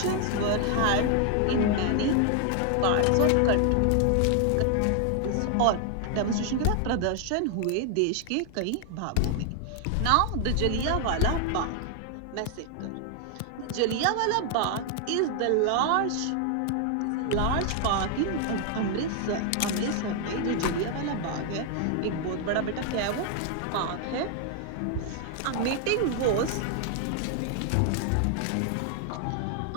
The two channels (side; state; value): both; different; correlation 0.00